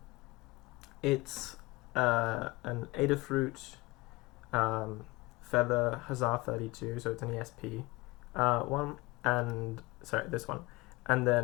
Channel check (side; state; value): right; quieter; 22.6 dB